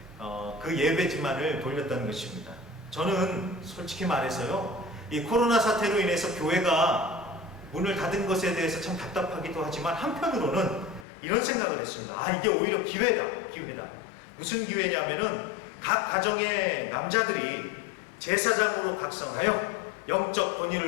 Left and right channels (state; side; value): drops out; right; at 11.1 s